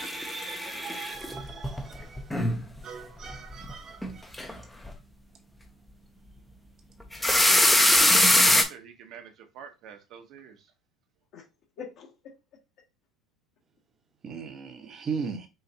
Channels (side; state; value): both; normal; correlation 0.83